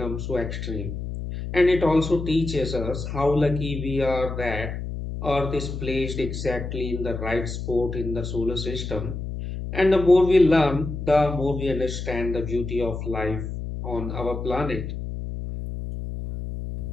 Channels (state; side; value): noise; left; hum, 6 dB below the sound